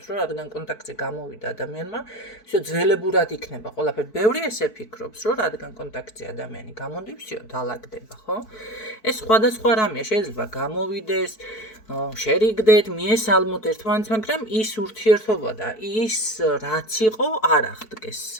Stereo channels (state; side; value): late; right; 4.6 ms